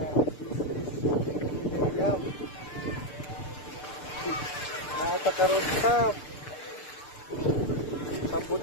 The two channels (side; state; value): right; late; 6.8 ms